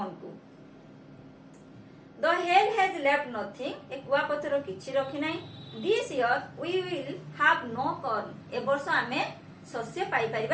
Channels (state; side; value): identical; both; correlation 1.00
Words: को। The hail has left nothing ए कुआ पत्थर किछि रखि नाही। This year we will have no corn ए वर्ष आमे शस्य पाई